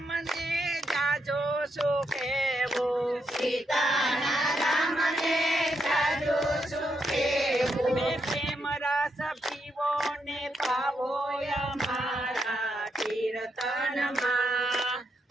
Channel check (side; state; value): both; normal; correlation 0.81